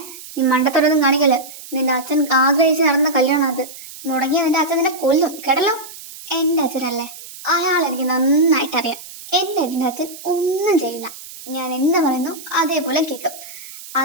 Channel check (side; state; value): right; noise; hiss, 15 dB below the sound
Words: നീ മണ്ടത്തോടൊന്നും കാണിക്കല്. നിന്റെ അച്ഛൻ ആഗ്രഹിച്ച് നടന്ന കല്യാണം അത്. മുടങ്ങിയ നിന്റെ അച്ഛൻ നിന്നെ കൊല്ലും, കേട്ടല്ലോ. എന്റെ അച്ഛനല്ലേ, അയാൾ എനിക്ക് നന്നായിട്ട് അറിയാം. എന്റെ അച്ഛൻ ഒന്നും ചെയ്യില്ല. ഞാൻ എന്താ പറയുന്നു അതേപോലെ കേൾക്കും.